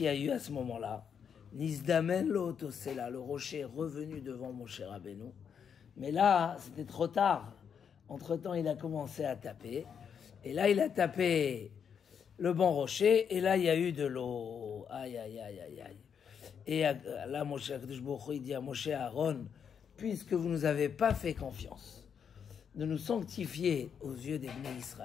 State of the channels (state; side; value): quieter; right; 7.4 dB